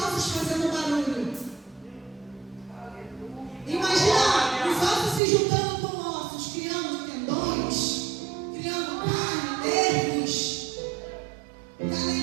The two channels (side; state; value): left; drops out; at 5.2 s